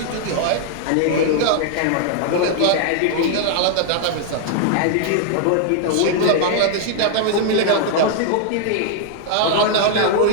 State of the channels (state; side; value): different; both; correlation 0.00